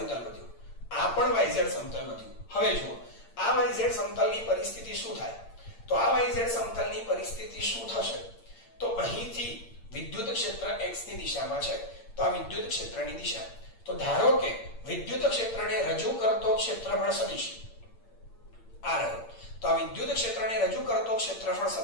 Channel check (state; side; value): late; right; 8.7 ms